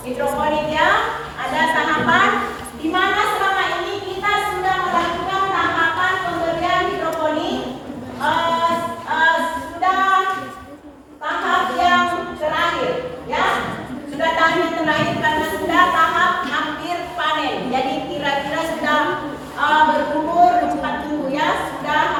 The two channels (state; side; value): identical; both; correlation 1.00